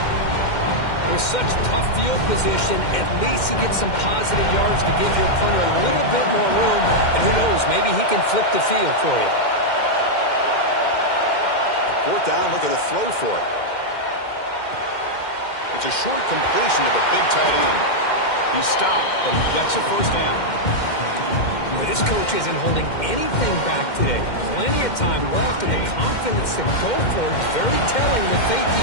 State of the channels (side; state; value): right; late; 2.1 ms